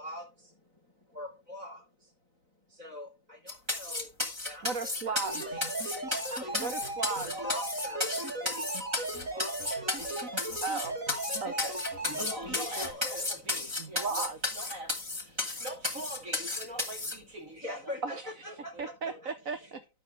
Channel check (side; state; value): left; late; 4.0 ms